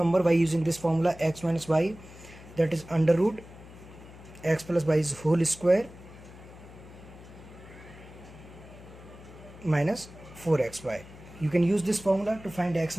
by using this formula, x minus y, that is under root x plus y is whole square minus 4xy. You can use this formula to find x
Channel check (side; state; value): left; noise; hum, 18 dB below the sound